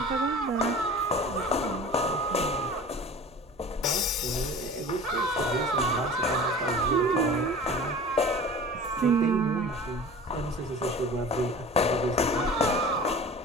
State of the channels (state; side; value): noise; right; hum, 29 dB below the sound